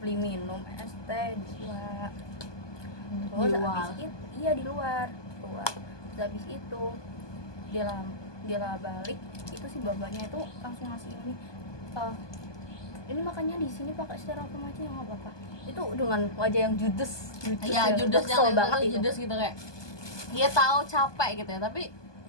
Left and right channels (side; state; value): right; late; 1.2 ms